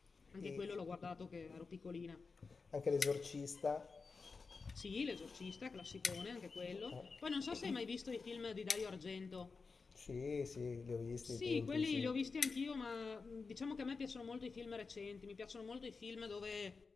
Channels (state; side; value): quieter; right; 4.5 dB